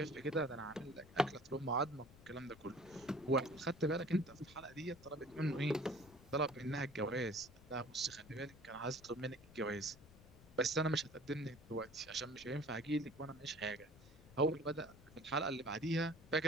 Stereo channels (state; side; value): noise; left; rumble, 21 dB below the sound